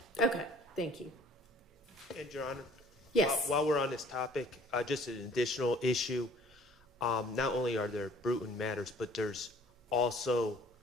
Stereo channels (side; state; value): both; normal; correlation 0.54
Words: Okay. Thank you. And Your Honor? Yes. While we're on this topic, just an additional issue. Not only are there Bruton matters, but there's also